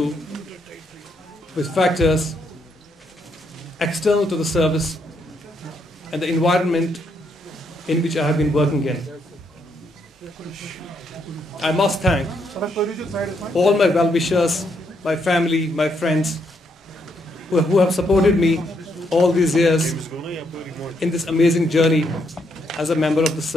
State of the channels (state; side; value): normal; both; correlation 0.76